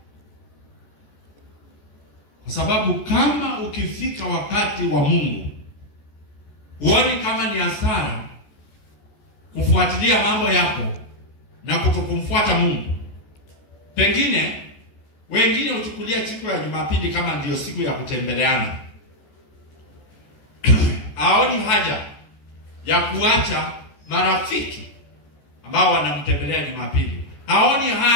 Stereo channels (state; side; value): late; right; 14 ms